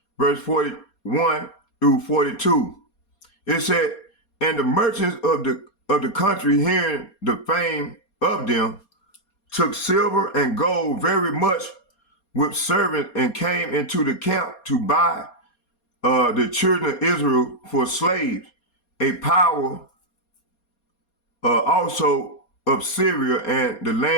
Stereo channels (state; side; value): late; right; 4.3 ms